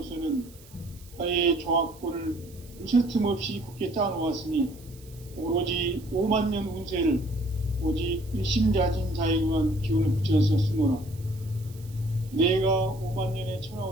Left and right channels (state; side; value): noise; right; hiss, 24 dB below the sound